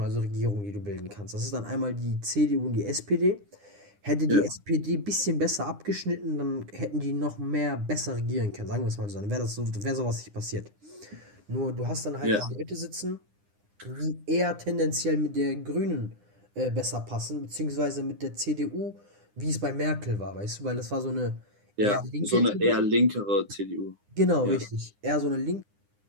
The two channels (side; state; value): left; late; 9.8 ms